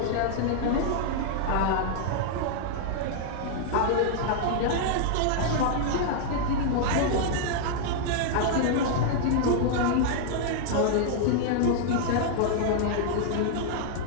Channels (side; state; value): both; different; correlation -0.01